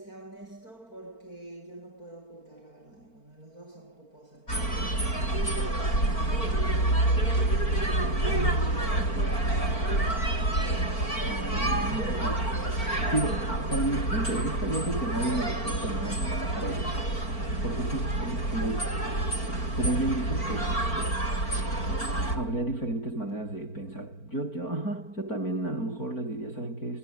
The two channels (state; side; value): late; right; 4.4 ms